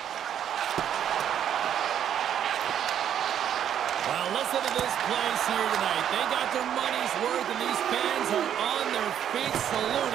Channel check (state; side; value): quieter; left; 9.6 dB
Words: Well, listen to this place here tonight. They got their money's worth, and these fans are on their feet